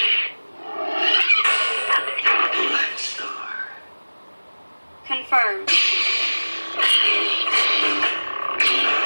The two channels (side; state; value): both; inverted; correlation -1.00